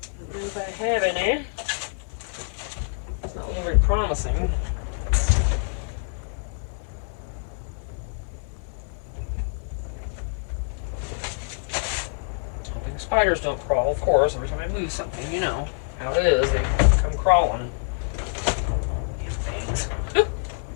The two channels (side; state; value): right; silent; 61 dB below the other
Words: Don't know if I have any. It's not looking very promising. Hoping spiders don't crawl, of course. Every time I move something, you know how it is. They come crawling. Things.